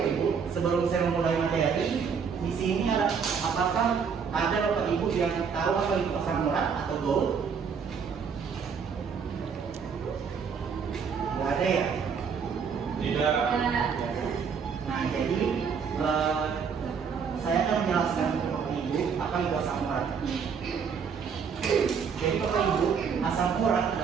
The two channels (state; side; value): quieter; left; 6.3 dB